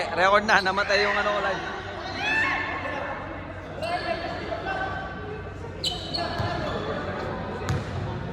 record na. Namatay yung ano ko live.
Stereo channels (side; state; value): both; identical; correlation 1.00